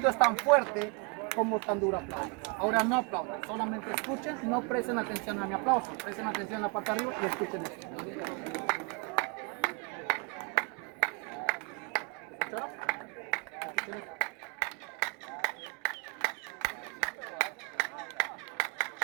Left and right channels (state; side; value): quieter; left; 31.2 dB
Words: tan fuerte como tan duro aplaudan. Ahora no aplaudan, solamente escuchen, no presten atención a mi aplauso, presten atención a la parte de arriba y escuchen esto. ¿Escucharon? Escuchen esto.